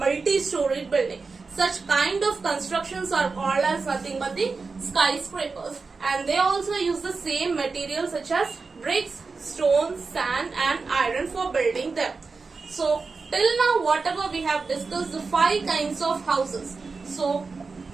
building. Such kind of constructions are called as nothing but the skyscrapers, and they also use the same materials such as bricks, stone, sand and iron for building them. So till now whatever we have discussed, the 5 kinds of houses. So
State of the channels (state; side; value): quieter; left; 4.4 dB